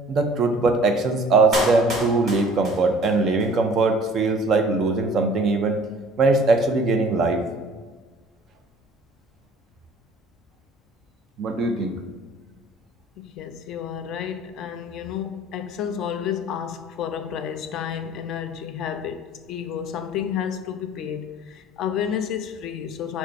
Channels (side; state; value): both; normal; correlation 0.50